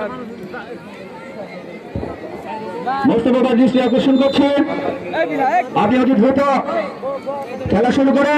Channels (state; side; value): identical; both; correlation 1.00